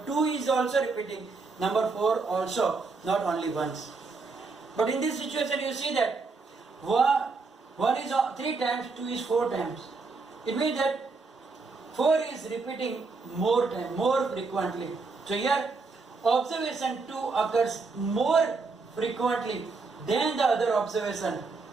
2 is also repeating. Number 4 also, not only once. But in this situation you see that 1 is 3 times, 2 is 4 times. It means that 4 is repeating more frequently. So here observation 2 occurs more frequently than the other observation.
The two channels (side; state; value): left; quieter; 4.2 dB